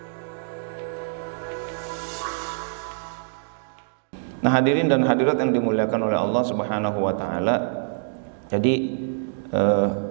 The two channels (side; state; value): left; silent; digital silence